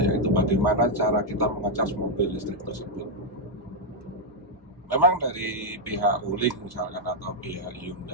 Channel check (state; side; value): normal; both; correlation -0.02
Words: yaitu bagaimana cara kita mengecas mobil listrik tersebut. Memang dari pihak Wuling misalkan atau pihak